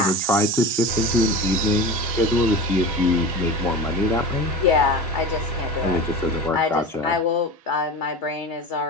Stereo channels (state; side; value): normal; both; correlation 0.30